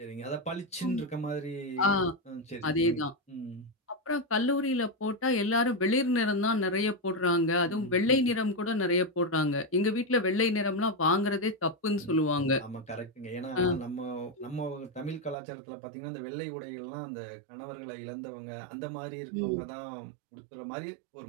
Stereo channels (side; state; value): left; drops out; at 15.4 s